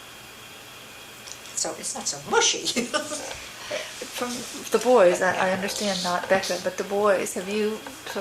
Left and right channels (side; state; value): both; identical; correlation 1.00